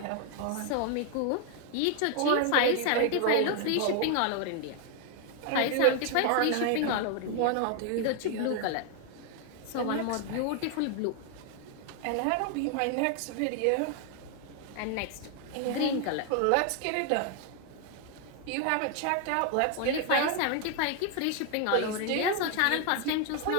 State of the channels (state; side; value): different; both; correlation 0.00